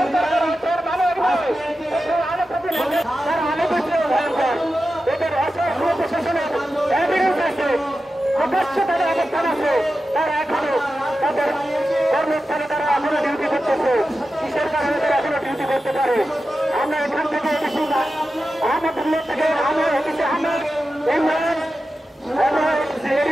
প্রকাশ্য তাদের অবস্থান আছে, তারা এখনো তাদের কর্মস্থানে তারা এখনো ডিউটি করতেছে। কিসের কারণে তারা এখনো ডিউটি করতে পারে? আমরা এখান থেকে আহমদুল্লাহ থেকে আহমেদ হচ্ছে আহমেদ ইমরান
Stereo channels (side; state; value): both; normal; correlation 0.92